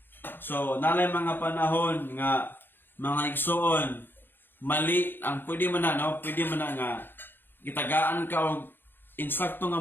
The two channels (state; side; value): late; right; 0.098 ms